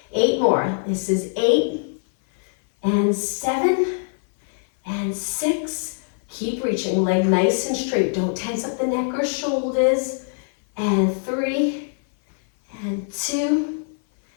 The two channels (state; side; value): silent; right; 57 dB below the other